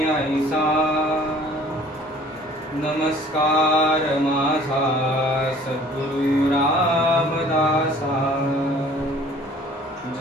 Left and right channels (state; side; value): normal; both; correlation 0.52